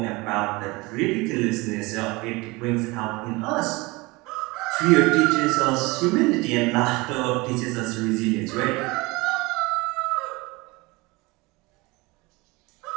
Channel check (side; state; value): left; quieter; 23.7 dB